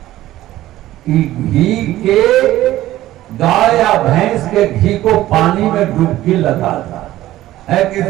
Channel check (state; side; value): quieter; left; 14.9 dB